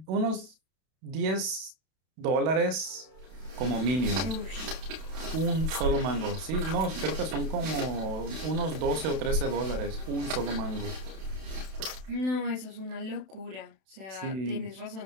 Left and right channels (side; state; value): left; late; 32 ms